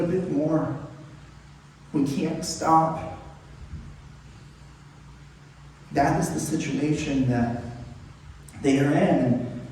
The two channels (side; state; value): both; identical; correlation 1.00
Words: bit more. We can't stop. That is the situation that they are in.